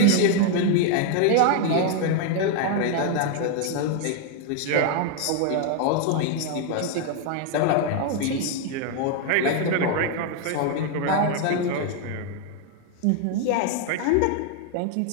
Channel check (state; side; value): different; both; correlation 0.00